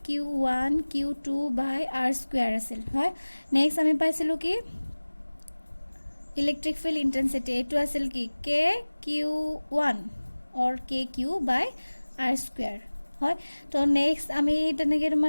Q2 বাই আৰ স্কুৱেৰ আছিল, হয়। নেক্সট আমি পাইছিলোঁ কি ইলেক্ট্ৰিক ফিল্ড ইণ্টেনচিটি, এইটো আছিল কি KQ1 or KQ by R square, হয়। তো নেক্সট আমি তেনেকৈ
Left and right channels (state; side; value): inverted; both; correlation -1.00